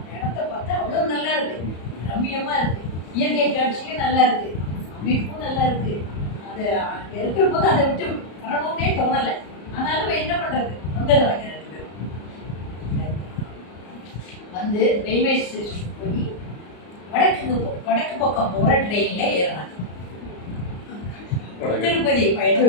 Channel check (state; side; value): late; right; 34 ms